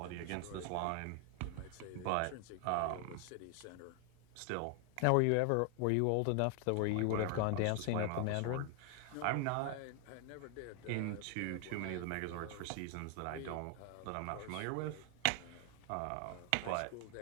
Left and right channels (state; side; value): different; both; correlation 0.00